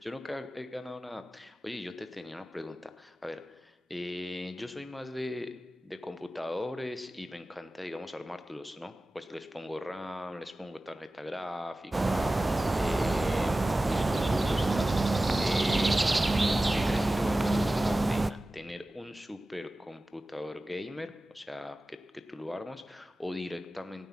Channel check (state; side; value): normal; both; correlation 0.96